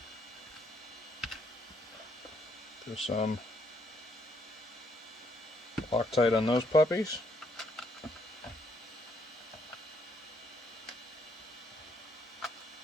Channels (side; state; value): both; normal; correlation 0.71